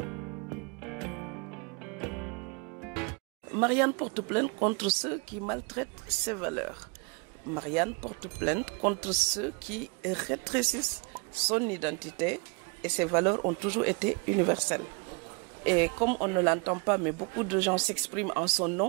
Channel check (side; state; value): left; quieter; 31.7 dB